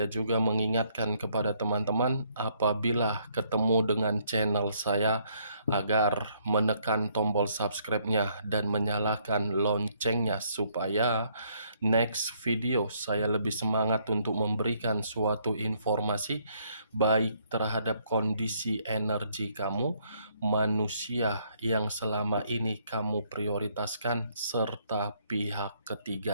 juga mengingatkan kepada teman-teman apabila ketemu dengan channel saya agar menekan tombol subscribe-nya dan menyalakan loncengnya supaya next video saya lebih semangat untuk memberikan suatu informasi baik terhadap kondisi energi kamu, manusia yang selama ini kamu prioritaskan, serta pihak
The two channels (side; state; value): both; inverted; correlation -0.68